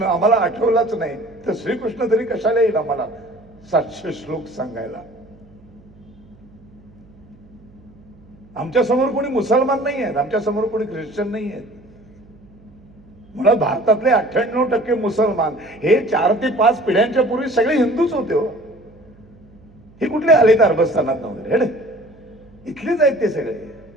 आम्हाला आठवलाच नाही तर श्रीकृष्ण तरी कशाला येईल आम्हाला 700 श्लोक सांगायला? आमच्या समोर कोणी मुसलमान नाही आहेत, आमच्या समोर कोणी ख्रिश्चन नाही आहेत. मुळात भारतातले 98% मुसलमान हे 4 ते 5 पिढ्यांच्या पूर्वी सगळे हिंदूच होते. हो, हे कुठले आले तर अरबस्थानात वगैरे, इथलेच आहेत ते सगळे.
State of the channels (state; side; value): noise; right; hum, 26 dB below the sound